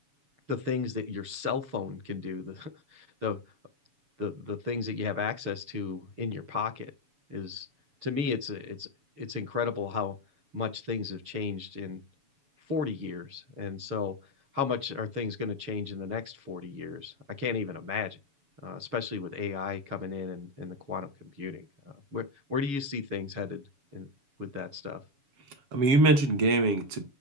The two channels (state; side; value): late; left; 7.1 ms